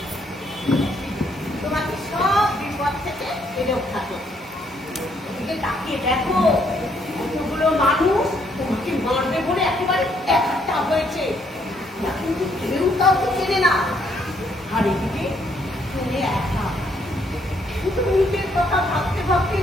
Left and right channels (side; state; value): both; normal; correlation 0.70